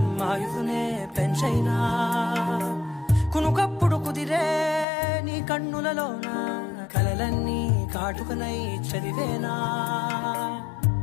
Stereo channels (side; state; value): right; drops out; at 4.9 s